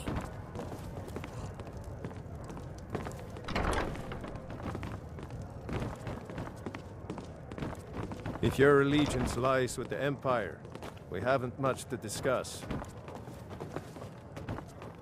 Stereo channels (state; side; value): identical; both; correlation 1.00